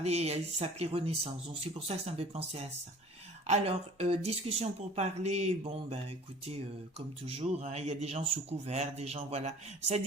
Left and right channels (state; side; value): normal; both; correlation 0.47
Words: il s'appelait Renaissance. Donc c'est pour ça que ça me fait penser à ça. Alors, discussion pour parler, bon, ben écoutez, comme toujours, hein, il y a des gens sous couvert, des gens, voilà, ça